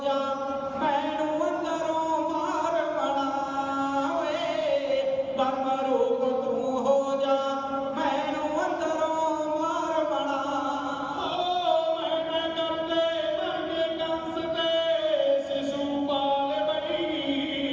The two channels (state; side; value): identical; both; correlation 1.00